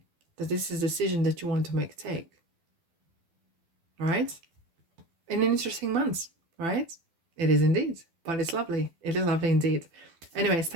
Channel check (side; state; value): left; late; 12 ms